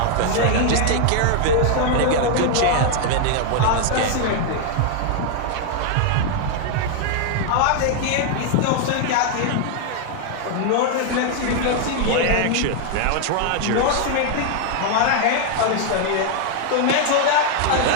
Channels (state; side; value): different; both; correlation 0.00